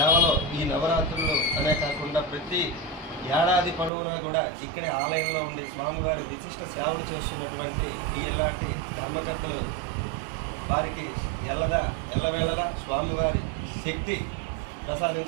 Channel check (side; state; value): left; drops out; at 3.9 s